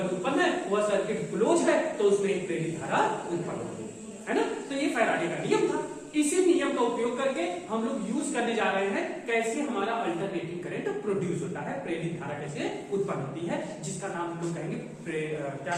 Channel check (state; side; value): identical; both; correlation 1.00